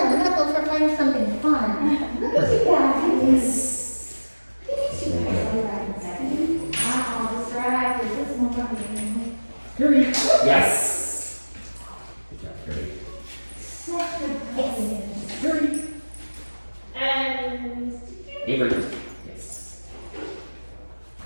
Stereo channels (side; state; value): both; inverted; correlation -1.00